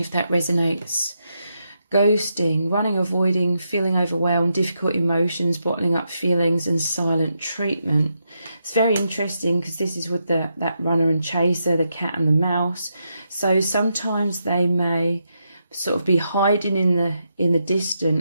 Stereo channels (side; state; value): both; inverted; correlation -0.83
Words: that resonates. Ghosting, running, avoiding, feeling overwhelmed, difficult emotions, bottling up feelings, and silent treatment. It's very interesting because this is with that runner and chaser, the cat and the mouse. So sometimes they may sort of be hiding in the